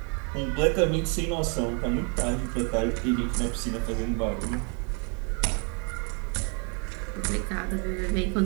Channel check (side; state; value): left; quieter; 36.8 dB